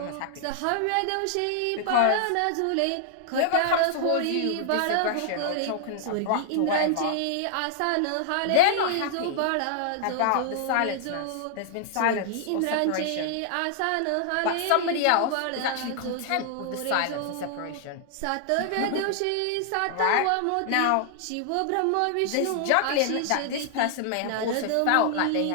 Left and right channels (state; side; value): different; both; correlation 0.00